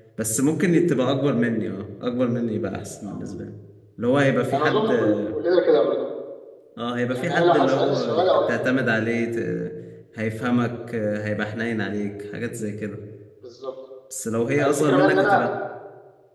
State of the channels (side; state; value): both; identical; correlation 1.00